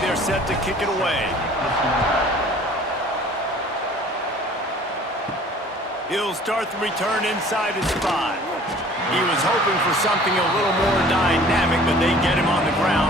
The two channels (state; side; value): normal; both; correlation 0.50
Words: set to kick it away. He'll start the return inside his 5. He was hoping for something a little more dynamic, but they get him on the